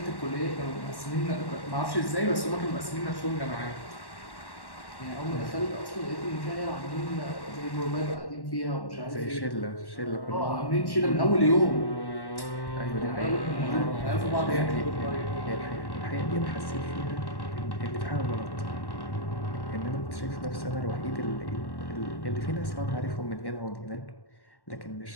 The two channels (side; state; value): right; late; 1.1 ms